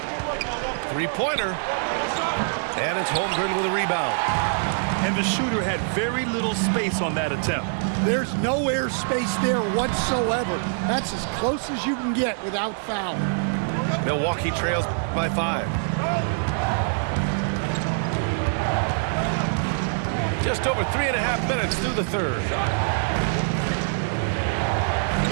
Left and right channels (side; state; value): left; silent; 60 dB below the other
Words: Three-pointer. And it's Holmgren with a rebound. And the shooter had very little space on that attempt. There's no air space there whatsoever. That's as close as you can get without foul. Milwaukee trails by 5. Just over 3.5 minutes through the third.